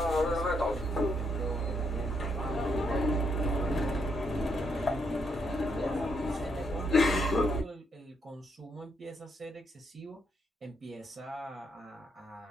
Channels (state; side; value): normal; both; correlation 0.76